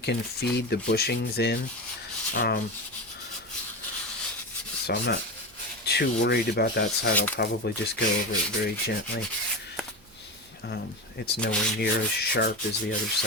feed the bushings in. So I'm not too worried about that side. I'll probably just go over it very gently. It's nowhere near as sharp as the other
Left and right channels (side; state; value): right; noise; hum, 28 dB below the sound